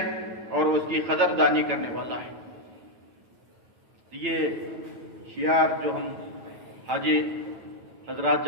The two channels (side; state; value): left; late; 8.9 ms